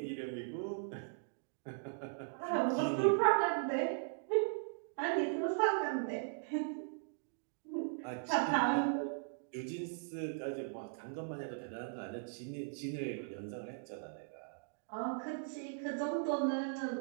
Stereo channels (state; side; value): silent; left; digital silence